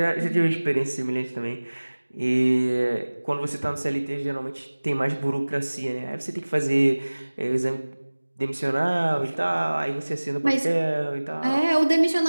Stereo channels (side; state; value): both; inverted; correlation -1.00